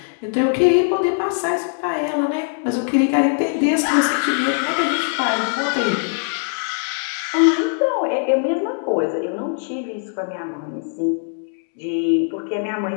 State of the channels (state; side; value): silent; right; 60 dB below the other